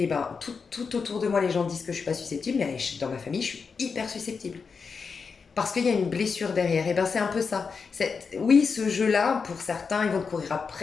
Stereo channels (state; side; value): quieter; right; 5.3 dB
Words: ben, tout autour de moi, les gens disent que je suis pas susceptible, mais dans ma famille, je suis hyper susceptible. Parce qu'il y a une blessure derrière. Et ben, c'est un peu ça. Oui, ce jeu-là, pour certains, ils vont te courir